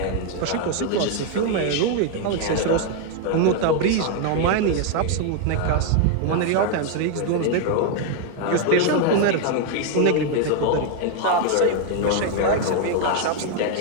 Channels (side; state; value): both; different; correlation 0.00